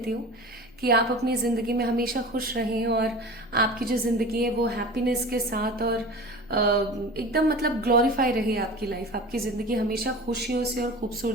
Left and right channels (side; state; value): both; normal; correlation 0.35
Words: हूँ कि आप अपनी ज़िंदगी में हमेशा खुश रहें और आपकी जो ज़िंदगी है वो हैप्पीनेस के साथ और एकदम मतलब ग्लोरीफाई रहे आपकी लाइफ, आपकी ज़िंदगी हमेशा खुशियों से और